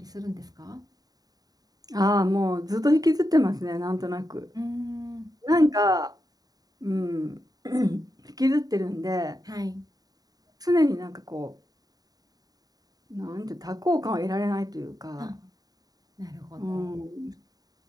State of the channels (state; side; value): late; left; 0.18 ms